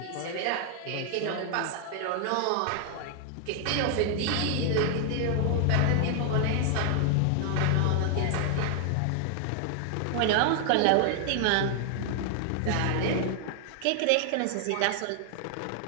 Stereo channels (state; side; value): different; both; correlation 0.00